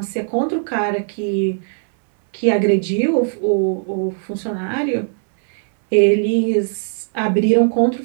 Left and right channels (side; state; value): left; silent; 67 dB below the other